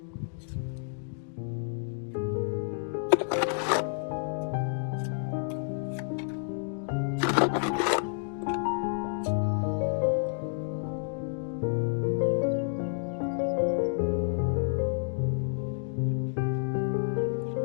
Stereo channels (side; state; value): right; silent; 58 dB below the other